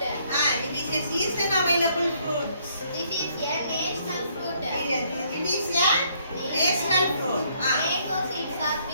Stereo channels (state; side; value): inverted; both; correlation -0.67